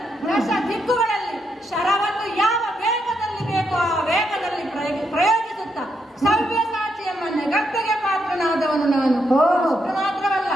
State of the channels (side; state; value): both; normal; correlation 0.80